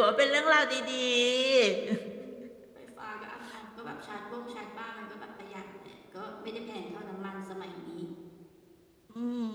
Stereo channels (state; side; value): identical; both; correlation 1.00